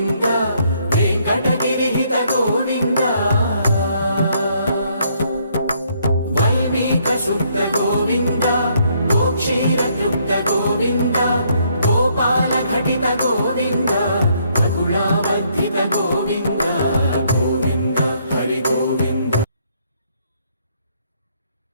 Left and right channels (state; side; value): inverted; both; correlation -0.69